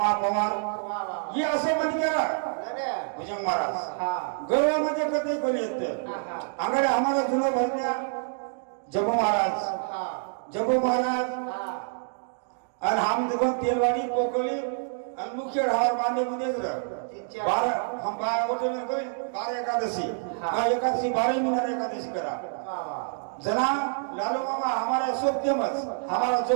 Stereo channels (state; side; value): silent; left; digital silence